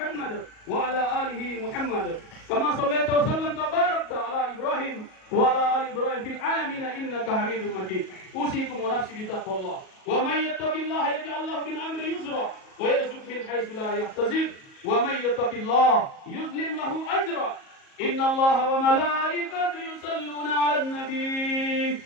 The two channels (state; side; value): late; right; 37 ms